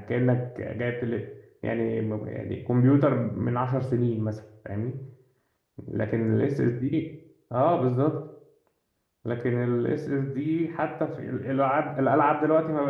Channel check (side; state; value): both; identical; correlation 1.00